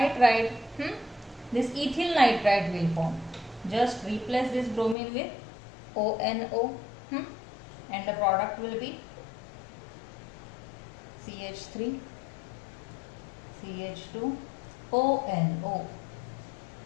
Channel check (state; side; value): drops out; right; at 5.0 s